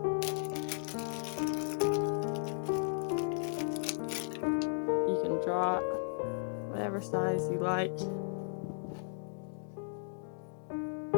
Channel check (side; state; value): right; silent; digital silence